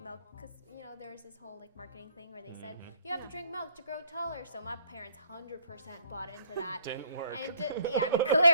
because there's this whole like marketing thing where they said you have to drink milk to grow taller. So my parents 100% bought into that. Didn't work. And yeah, I mean,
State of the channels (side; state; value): both; inverted; correlation -0.63